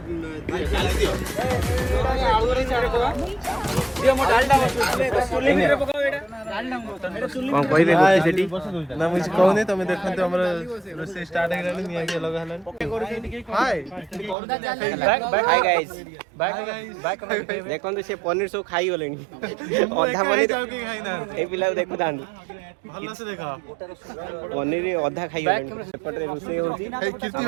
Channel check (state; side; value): drops out; left; at 14.4 s